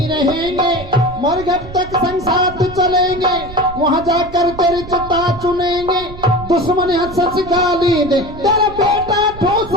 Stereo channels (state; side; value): noise; right; rumble, 14 dB below the sound